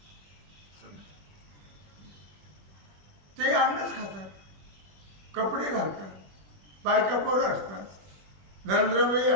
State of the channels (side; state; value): left; late; 21 ms